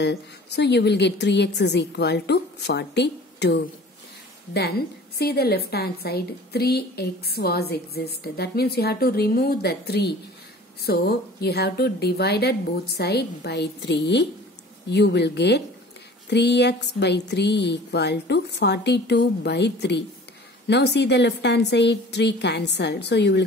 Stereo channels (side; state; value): both; normal; correlation 0.45